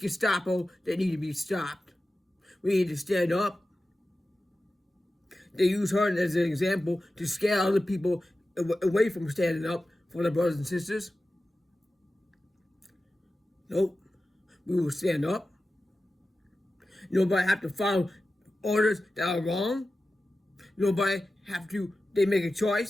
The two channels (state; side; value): normal; both; correlation 0.94